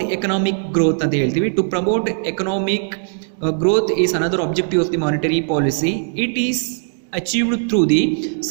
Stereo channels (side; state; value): left; silent; 66 dB below the other